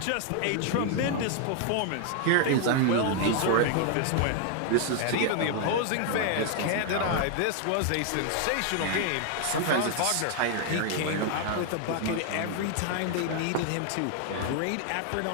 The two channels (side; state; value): both; different; correlation 0.00